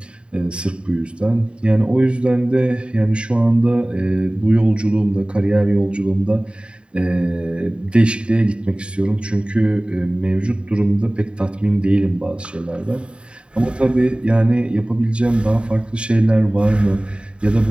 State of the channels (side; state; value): left; late; 0.054 ms